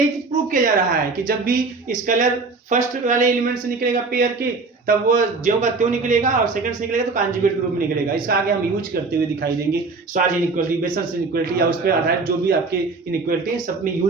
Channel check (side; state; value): left; quieter; 4.0 dB